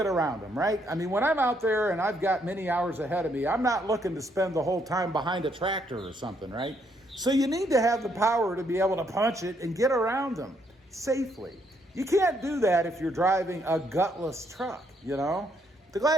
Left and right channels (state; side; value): normal; both; correlation 0.72